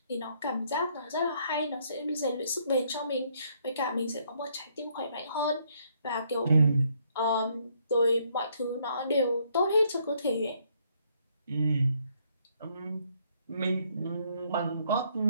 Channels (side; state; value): both; inverted; correlation -0.69